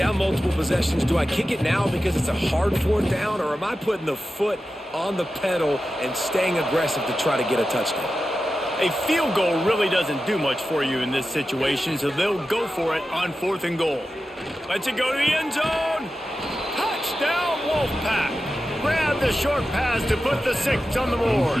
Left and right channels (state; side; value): normal; both; correlation 0.92